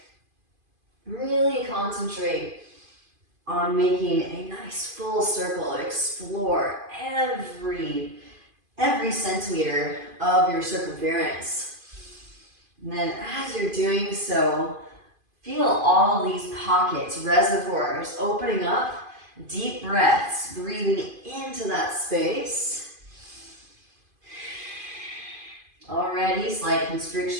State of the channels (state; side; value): late; left; 2.5 ms